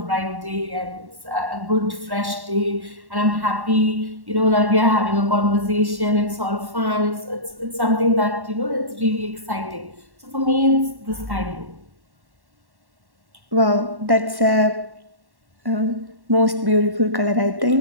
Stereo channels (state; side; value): late; left; 1.1 ms